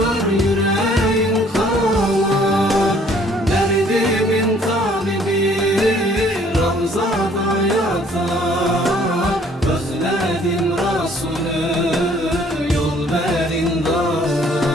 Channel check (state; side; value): normal; both; correlation 0.59